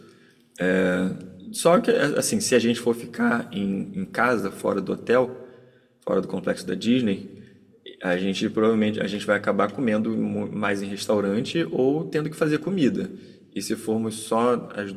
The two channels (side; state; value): both; identical; correlation 1.00